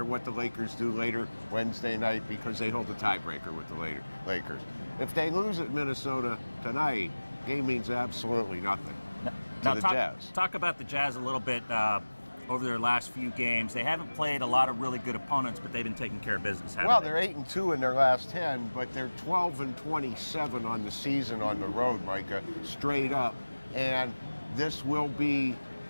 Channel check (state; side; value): inverted; both; correlation -1.00